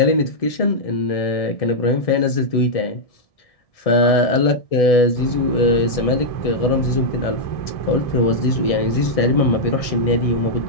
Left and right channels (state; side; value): late; right; 1.6 ms